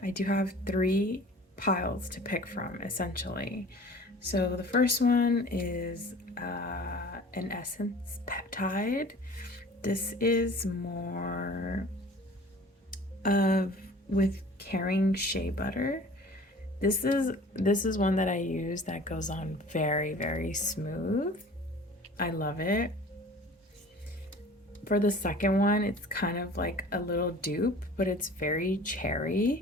I do have 3 piles to pick from, essentially. So, the first one is an essence peptide. This is more of with caring shea butter. This is one that I use that goes on very smooth. I love it. For the second one, it's kind of like a little dupe, but it's very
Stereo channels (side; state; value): both; normal; correlation 0.45